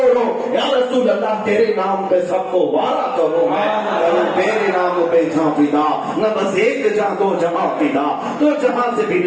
یا رسول اللہ تیرے نام پہ سب کو وارا کرو، میں تیرے نام پہ جہاں فدا، نہ بس ایک جہاں دو جہاں فدا، تو جہاں سے بھی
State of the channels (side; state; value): both; identical; correlation 1.00